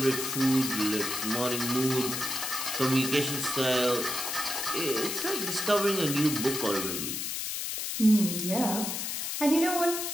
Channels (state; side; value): noise; left; hiss, 3 dB below the sound